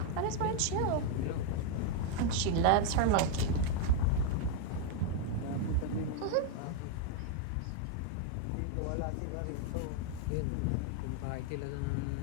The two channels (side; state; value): both; different; correlation 0.01